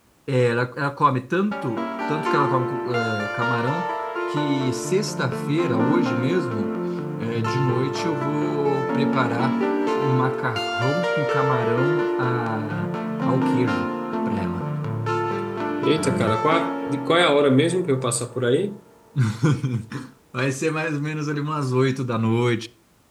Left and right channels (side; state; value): both; identical; correlation 1.00